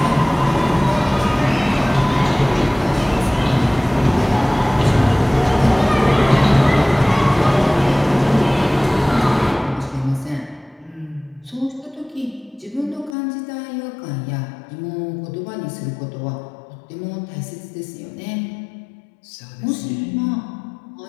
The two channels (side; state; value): right; drops out; at 13.2 s